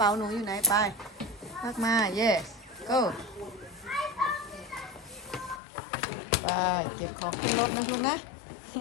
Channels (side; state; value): right; drops out; at 5.6 s